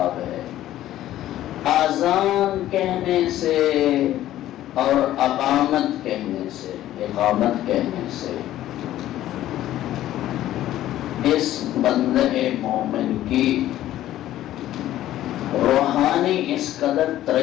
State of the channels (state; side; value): quieter; right; 13.5 dB